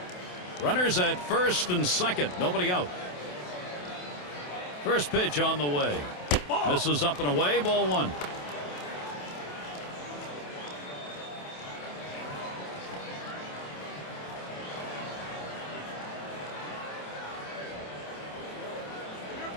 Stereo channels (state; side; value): late; right; 27 ms